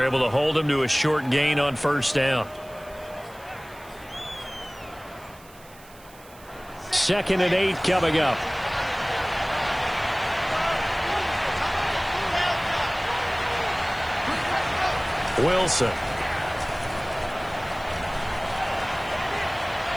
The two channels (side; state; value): right; noise; hiss, 23 dB below the sound